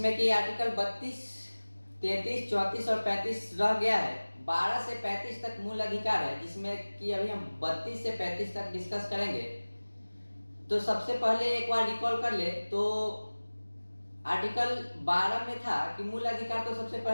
कि आर्टिकल 32, 33, 34 और 35 रह गया है। 12 से 35 तक मूल अधिकार है, जिसमें कि अभी हम 32 से 35 तक डिस्कस करेंगे। तो सबसे पहले एक बार रिकॉल कर ले तो आर्टिकल 12 में था कि मूल अधिकार तो सबसे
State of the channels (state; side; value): inverted; both; correlation -1.00